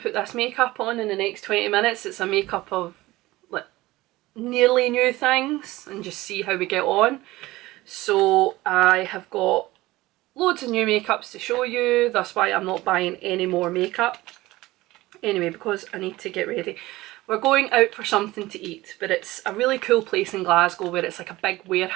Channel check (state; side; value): quieter; left; 18.6 dB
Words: put this makeup on in the next 20 minutes. It's a makeup of like nearly new things and just see how we get on. So I have got loads of new makeups to show you. That's why I'm not buying any more makeup. Anyway, because I need to get ready. We're going out for something to eat, but it's a really cool place in Glasgow where it's like a big